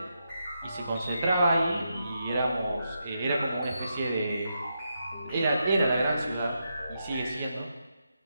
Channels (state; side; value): inverted; both; correlation -0.84